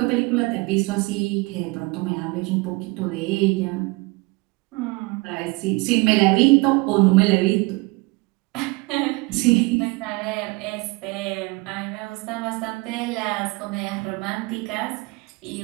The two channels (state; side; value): quieter; left; 25.8 dB